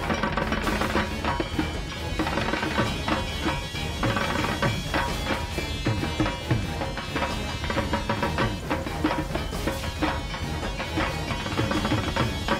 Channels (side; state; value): both; identical; correlation 1.00